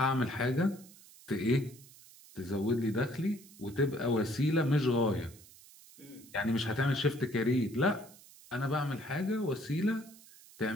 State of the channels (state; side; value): noise; right; hiss, 22 dB below the sound